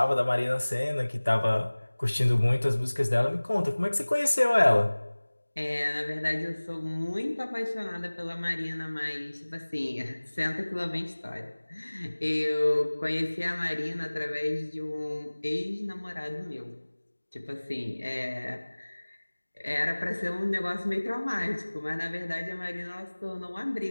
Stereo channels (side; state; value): both; inverted; correlation -1.00